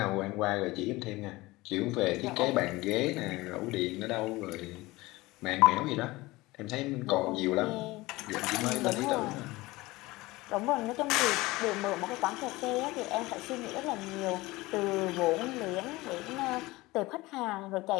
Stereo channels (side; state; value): right; quieter; 20.5 dB